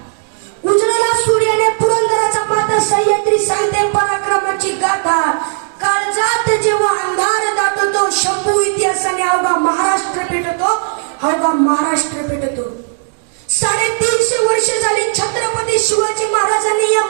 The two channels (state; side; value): silent; left; digital silence